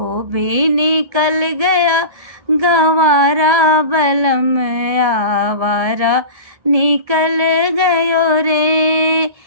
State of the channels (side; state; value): left; late; 1.7 ms